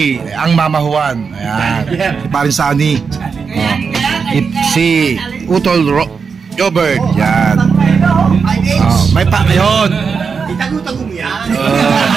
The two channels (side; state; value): left; quieter; 5.6 dB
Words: ang Mama Juan, ayan, si paring Sunny, si Utol Jobert, yan. May pa, yun.